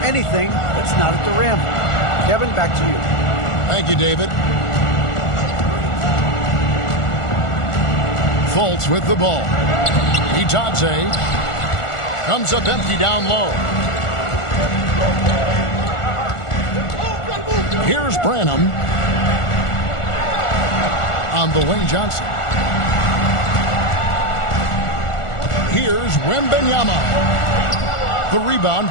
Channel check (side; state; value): right; late; 1.4 ms